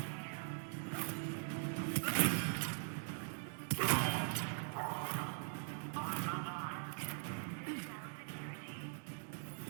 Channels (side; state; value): left; silent; digital silence